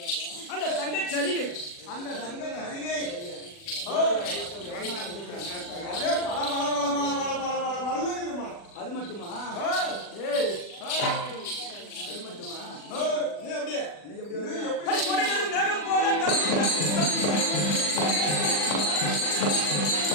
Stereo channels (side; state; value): right; late; 40 ms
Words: அந்த தங்கச் சரிகை, அந்த தங்க அருகே அதே பல பல பல பல பல பல பல பல்லுமா. அது மட்டுமா? ஏய், அது மட்டுமா? நீ அப்படியே நீ எப்படி நீ வருவ? எப்படி அடி கொடைகளும் மேகம் போல